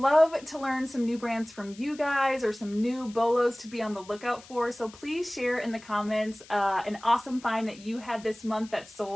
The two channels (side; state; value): left; noise; hiss, 21 dB below the sound